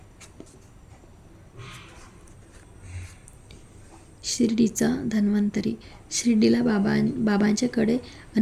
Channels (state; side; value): identical; both; correlation 1.00